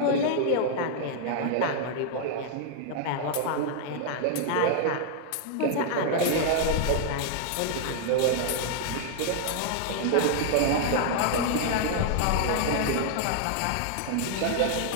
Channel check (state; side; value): different; both; correlation -0.01